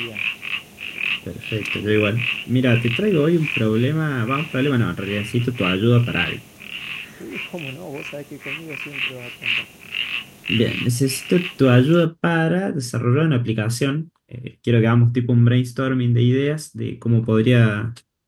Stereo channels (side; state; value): both; identical; correlation 1.00